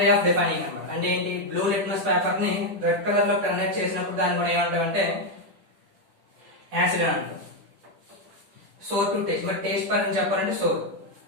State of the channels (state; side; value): late; left; 10 ms